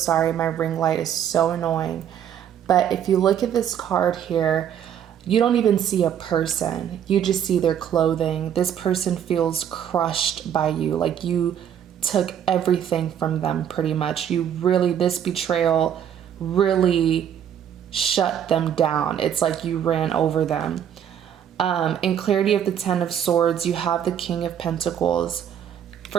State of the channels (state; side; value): quieter; left; 9.3 dB